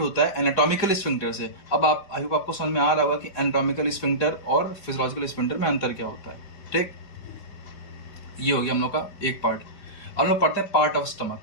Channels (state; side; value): late; right; 5.2 ms